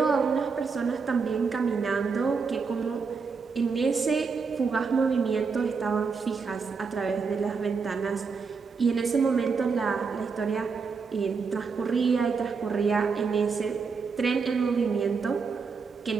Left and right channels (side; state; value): left; quieter; 5.2 dB